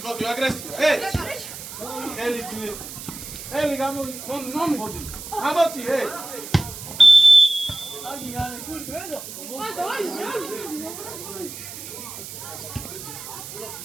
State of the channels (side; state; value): right; noise; hiss, 11 dB below the sound